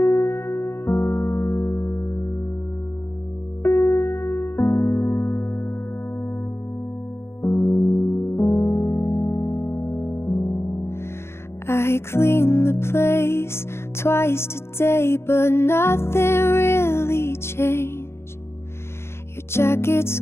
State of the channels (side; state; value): right; late; 0.12 ms